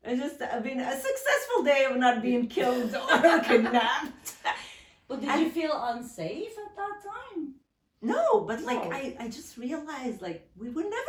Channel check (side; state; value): both; identical; correlation 1.00